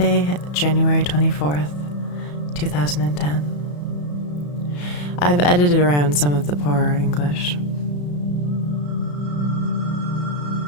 January 24th, 2010. I've edited around some of the poorer English.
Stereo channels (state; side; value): late; right; 34 ms